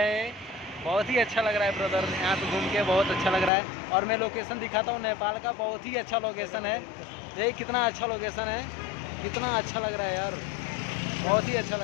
बहुत ही अच्छा लग रहा है ब्रदर, यहाँ पे घूम के बहुत अच्छा लग रहा है। और मैं लोकेशन दिखाता हूँ नेपाल का, बहुत ही अच्छा लोकेशन है। देख कितना अच्छा लोकेशन है, कितना अच्छा लग रहा है यार, बहुत ही अच्छा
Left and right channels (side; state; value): right; drops out; at 3.5 s